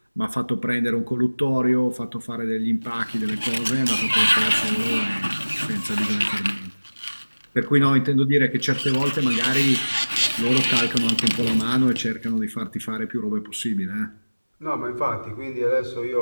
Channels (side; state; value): both; inverted; correlation -1.00